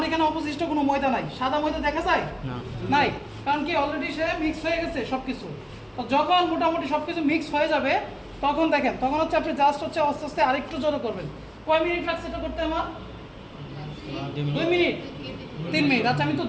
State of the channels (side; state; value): both; identical; correlation 1.00